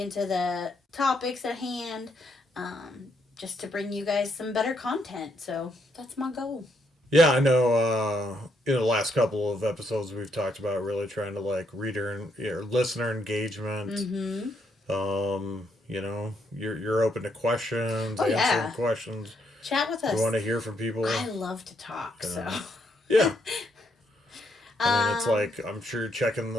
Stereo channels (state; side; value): normal; both; correlation 0.75